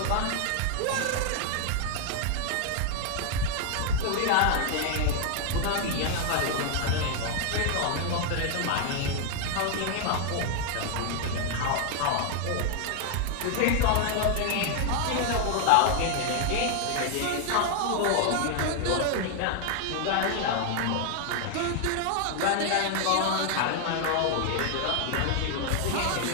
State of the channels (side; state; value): both; different; correlation 0.00